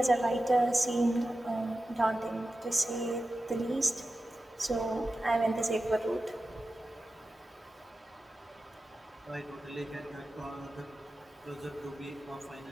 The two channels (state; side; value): normal; both; correlation 0.93